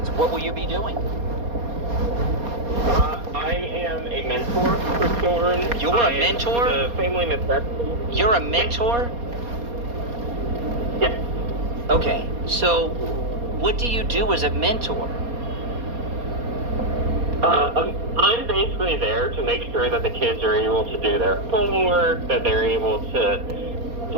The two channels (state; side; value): late; left; 4.2 ms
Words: What will you be doing? I am a mentor for children. You're a mentor? The family necessities. You're a mentor? Yes. Okay, so what do you do as a mentor? I'm basically there to make sure that the kids are able to do their homework, that they're able to